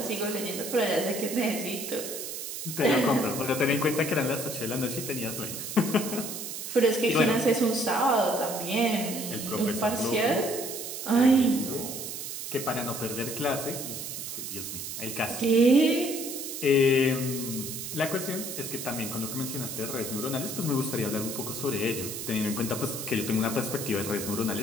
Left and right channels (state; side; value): noise; right; hiss, 6 dB below the sound